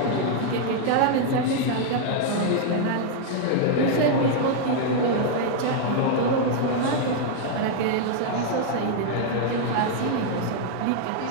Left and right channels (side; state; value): both; different; correlation 0.00